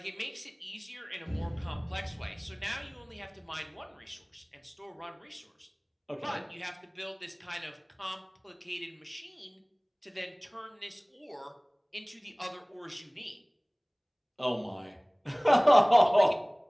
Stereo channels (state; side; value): identical; both; correlation 1.00